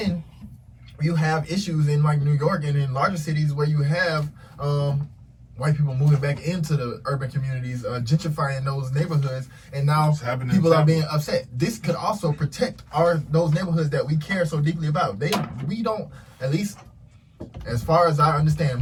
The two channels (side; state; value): both; identical; correlation 1.00